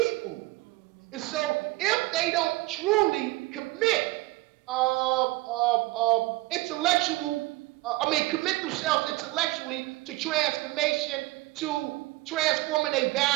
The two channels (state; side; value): quieter; left; 20.2 dB